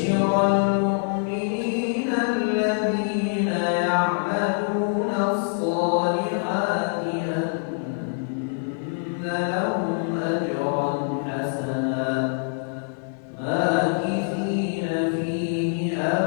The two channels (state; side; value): silent; right; digital silence